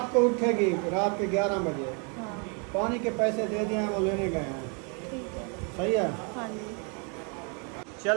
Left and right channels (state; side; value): quieter; left; 36.5 dB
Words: को उठेगी, रात के 11 बजे। हाँ पानी के पैसे दे दिए हैं, वो लेने गए हैं। ठीक है। सही है। हाँ जी